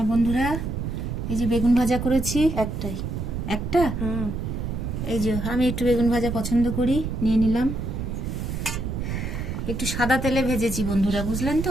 বন্ধুরা, এই যে বেগুন ভাজা করেছি, একটা। এই যে আমি একটু বেগুন ভাজা পছন্দ করি, নিয়ে নিলাম। একটু সাদা তেলে ভেজেছি বন্ধুরা, বুঝলেন তো,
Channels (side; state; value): right; noise; rumble, 4 dB below the sound